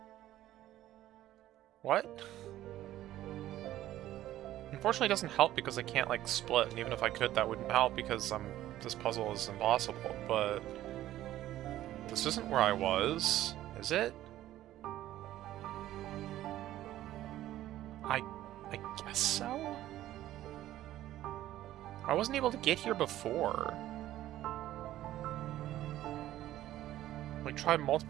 What? Unfortunately, it doesn't help because I can't, like, split, and even if I could, that wouldn't help because this puzzle is impossible, but... This isn't where I was, is it? I guess so? I wasn't able to get here before. Like, tried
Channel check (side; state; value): left; quieter; 13.9 dB